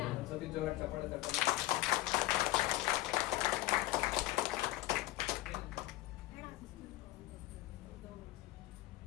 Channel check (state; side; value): quieter; right; 17.7 dB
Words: ಒಂದ್ಸತಿ ಜೋರಾಗಿ ಚಪ್ಪಾಳೆ ತಟ್ಟಿ.